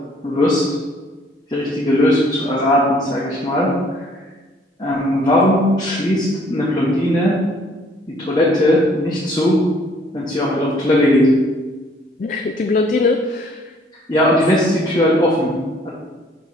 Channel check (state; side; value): normal; both; correlation 0.60